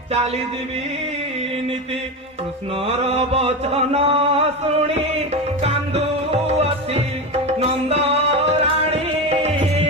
चाली जीवी नीति कृष्णर वचन शुणी कांदू अति नंद राणी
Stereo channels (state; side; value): normal; both; correlation 0.19